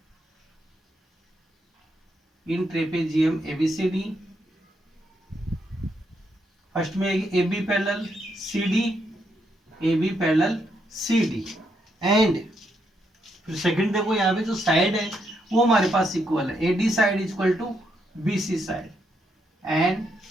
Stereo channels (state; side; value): normal; both; correlation 0.78